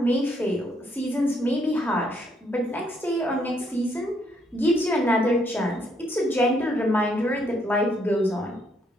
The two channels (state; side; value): normal; both; correlation 0.72